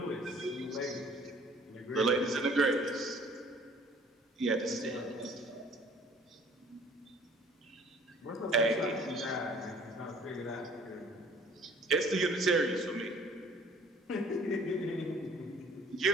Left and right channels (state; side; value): normal; both; correlation 0.54